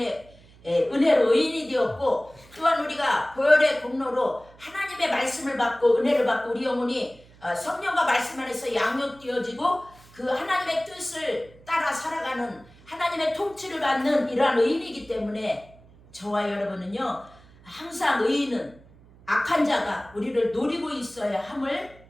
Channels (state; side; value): noise; right; hum, 25 dB below the sound